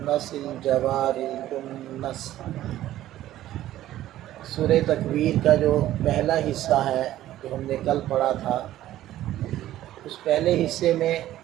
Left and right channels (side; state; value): left; quieter; 13.8 dB